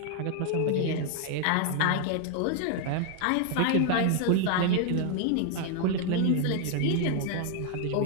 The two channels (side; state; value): both; different; correlation 0.00